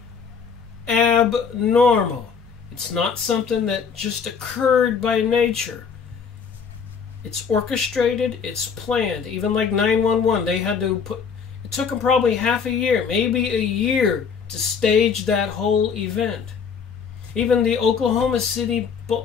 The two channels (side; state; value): right; quieter; 6.2 dB